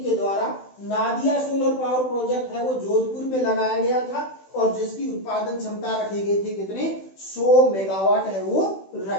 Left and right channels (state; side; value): late; right; 16 ms